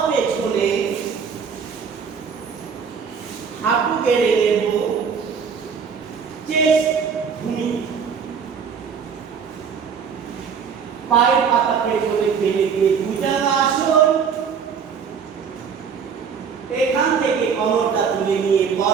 পেছনে, হাঁটু গেড়ে নেব, চেস্ট ভূমি, পায়ের পাতা পেছনে ফেলে দিয়ে ভুজঙ্গাসন। এখান থেকে কোমরটা তুলে নিয়ে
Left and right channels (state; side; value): quieter; left; 6.5 dB